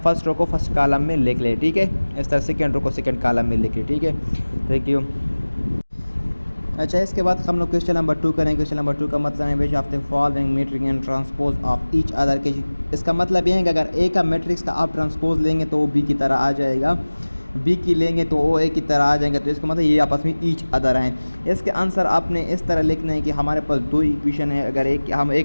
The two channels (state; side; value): inverted; both; correlation -1.00